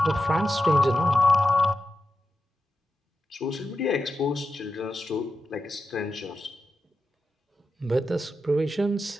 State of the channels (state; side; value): normal; both; correlation 0.90